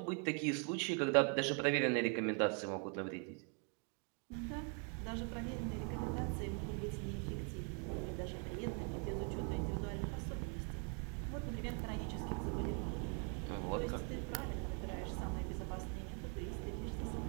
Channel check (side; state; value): left; quieter; 38.9 dB